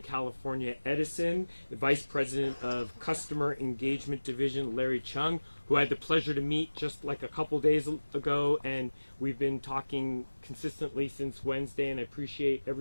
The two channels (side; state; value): both; inverted; correlation -1.00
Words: California Edison, the Vice President of Customer Engagement Division, Larry Chung, who I had the pleasure to meet just like a couple days ago, and we've been talking consistently since Wednesday, and I appreciate